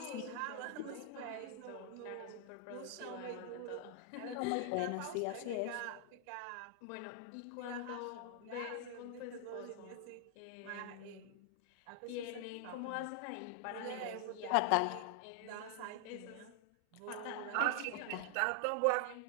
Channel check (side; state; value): both; different; correlation 0.00